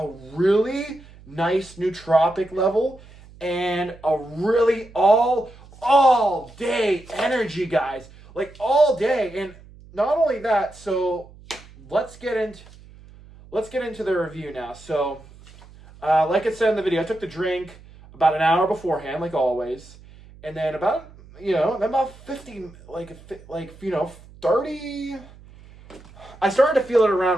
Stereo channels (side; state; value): right; noise; hum, 22 dB below the sound